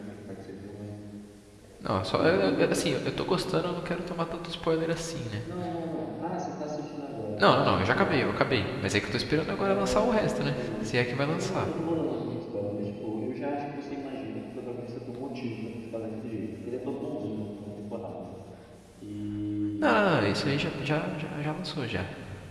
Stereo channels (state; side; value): identical; both; correlation 1.00